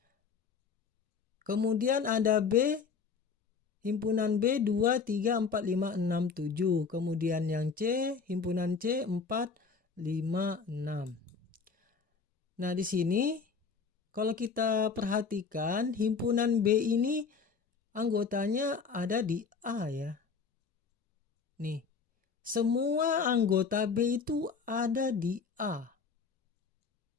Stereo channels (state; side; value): quieter; right; 5.3 dB